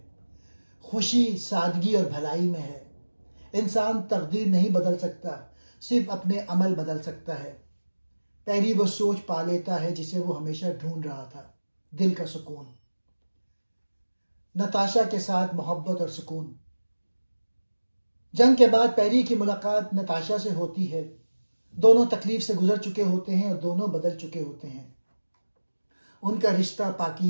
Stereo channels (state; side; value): inverted; both; correlation -1.00